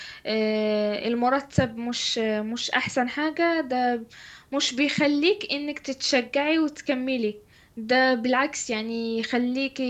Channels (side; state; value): both; identical; correlation 1.00